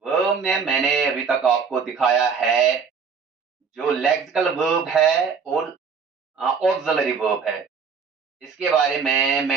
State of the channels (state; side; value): quieter; left; 5.8 dB